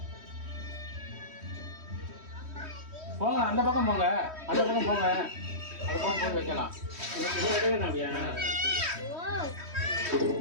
போங்க அந்த பக்கம் போங்க அந்த பக்கம் போங்க அந்த பக்கம் போய் வைக்கலாம்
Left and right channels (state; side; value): late; left; 3.1 ms